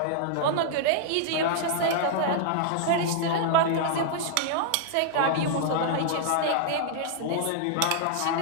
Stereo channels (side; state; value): both; different; correlation -0.01